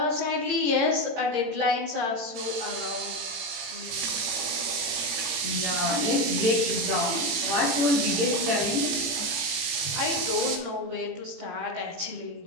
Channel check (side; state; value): left; late; 18 ms